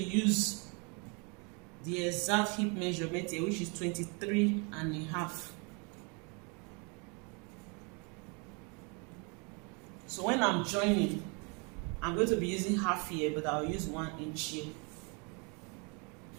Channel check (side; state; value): left; quieter; 33.2 dB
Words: use the exact hip measurement here, which is 23 and a half. So when I'm joining, I'm going to be using half here, but I'll use 1 inch here.